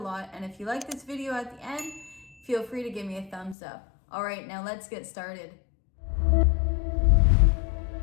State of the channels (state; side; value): drops out; right; at 3.6 s